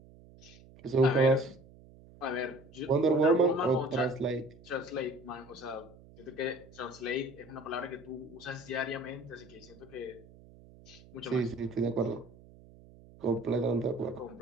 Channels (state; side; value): noise; right; hum, 22 dB below the sound